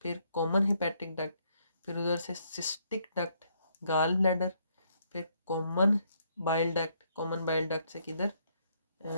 फिर कॉमन हेपेटिक डक्ट, फिर उधर से सिस्टिक डक्ट, गाल ब्लैडर, फिर common bile duct, common bile duct से किधर,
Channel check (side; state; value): both; inverted; correlation -0.72